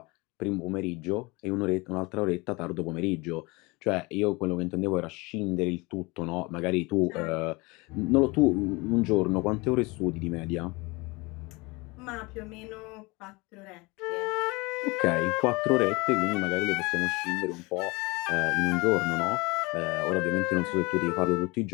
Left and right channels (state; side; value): quieter; right; 25.1 dB